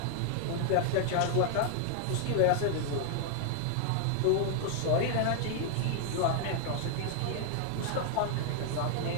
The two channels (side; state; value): both; different; correlation 0.00